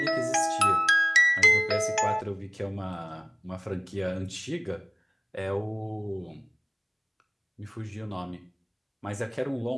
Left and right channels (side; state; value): both; identical; correlation 1.00